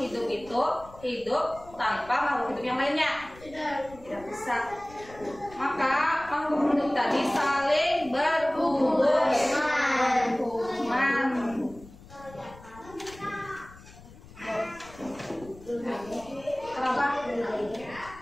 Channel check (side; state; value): left; noise; rumble, 20 dB below the sound